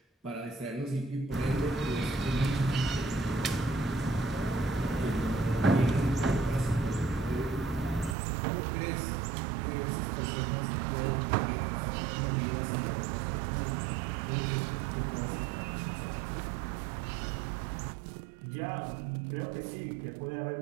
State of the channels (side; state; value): left; drops out; at 8.2 s